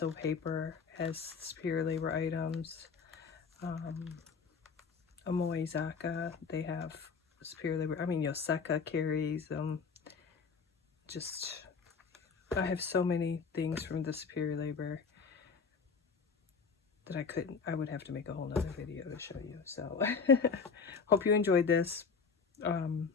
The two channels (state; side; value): quieter; right; 5.5 dB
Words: Paper has Superior Labor items. Amoizaka, they have Superior Labor. I mean, Yoseka carries them. I have so many things from the Superior Labor that I would have to make a whole nother video to show you. So hope you enjoyed this.